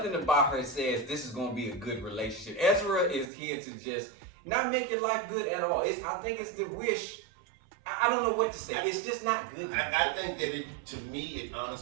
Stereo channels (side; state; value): left; drops out; at 3.3 s